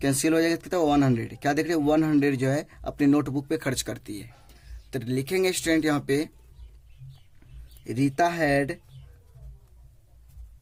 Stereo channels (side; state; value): both; identical; correlation 1.00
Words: कैंसिल हो जाएगा, कितना 100। क्या देख रहे हैं 100 जो है अपनी नोटबुक पे खर्च करती है। तो लिखेंगे स्टूडेंट यहाँ पे Rita had